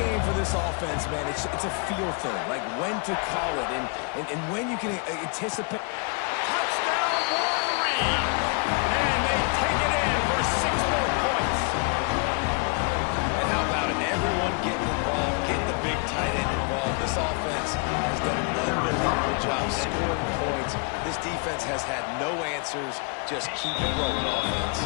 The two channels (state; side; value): quieter; right; 36.0 dB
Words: for this offense, man, it's a feel thing, like when to call it and when you can anticipate. Touchdown, Wolverines! And they take it in for 6 more points. And how about it? Everyone getting involved, getting the big tight end involved. This offense has done an unbelievable job scoring points. This defense has had no answers. Just keep it rolling, offense.